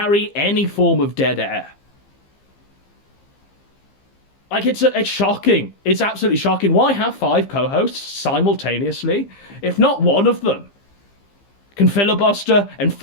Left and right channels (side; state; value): right; late; 15 ms